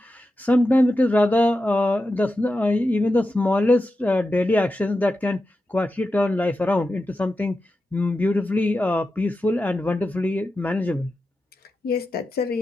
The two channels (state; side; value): normal; both; correlation 0.91